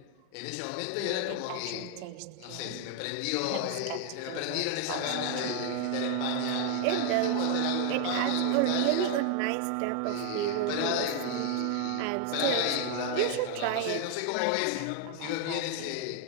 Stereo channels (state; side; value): different; both; correlation 0.01